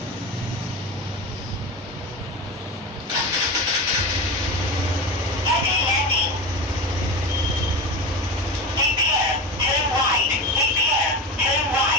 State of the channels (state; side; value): normal; both; correlation 0.24